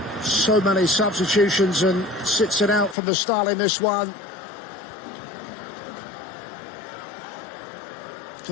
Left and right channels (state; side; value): drops out; right; at 3.0 s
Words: so many substitutions and sits it out from the start in this one.